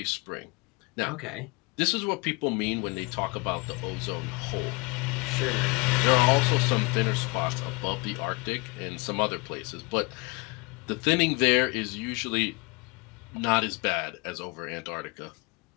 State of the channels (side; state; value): right; quieter; 27.8 dB